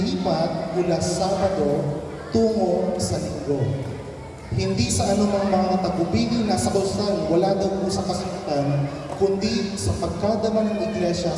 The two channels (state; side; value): identical; both; correlation 1.00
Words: mula Sabado tungo sa Linggo. Hindi sa anumang mga tagubilin na sa kausan, wala daw po sa kasulatan, kundi sa pagkadama ng Iglesia